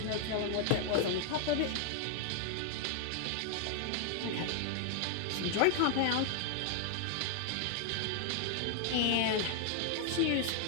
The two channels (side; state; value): both; different; correlation 0.00